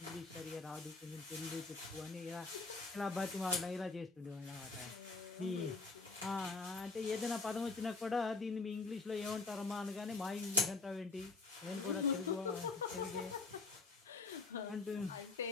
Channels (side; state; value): right; quieter; 3.8 dB